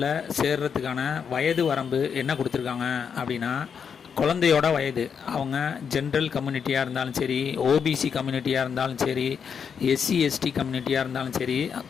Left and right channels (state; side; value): quieter; right; 6.9 dB